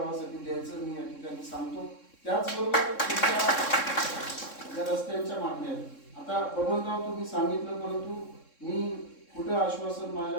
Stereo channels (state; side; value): late; right; 3.6 ms